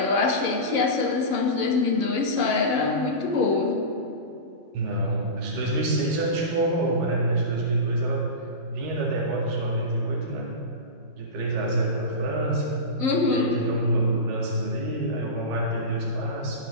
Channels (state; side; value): late; left; 11 ms